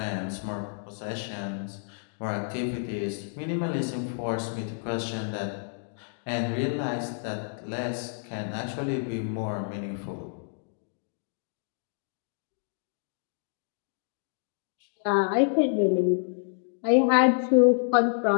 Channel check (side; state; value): right; silent; digital silence